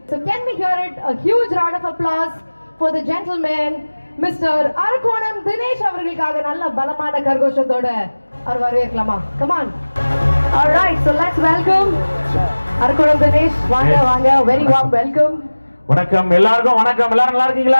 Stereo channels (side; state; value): both; inverted; correlation -1.00